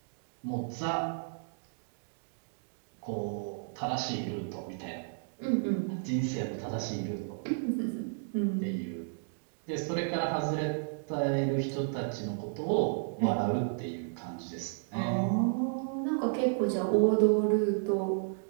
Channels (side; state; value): left; silent; digital silence